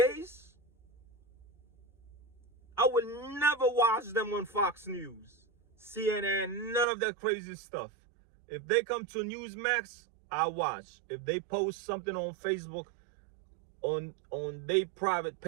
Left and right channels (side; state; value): left; drops out; at 6.9 s